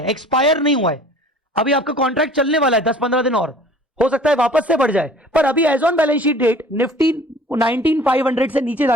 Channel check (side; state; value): both; normal; correlation 0.49